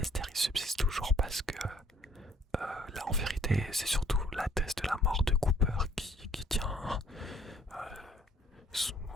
il subsiste toujours parce que là, en vérité, c'est surtout la thèse de la mort de Cooper qui tient.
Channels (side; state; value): both; normal; correlation 0.61